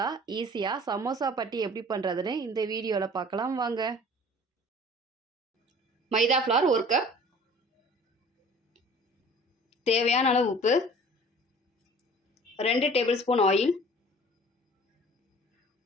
ஈஸியாக சமோசா பட்டி எப்படி பண்ணுறதுன்னு இந்த வீடியோவில் பார்க்கலாம் வாங்க. மைதா ஃப்ளார் 1 கப், தேவையான அளவு உப்பு, 2 table spoon oil,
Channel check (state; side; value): normal; both; correlation 0.47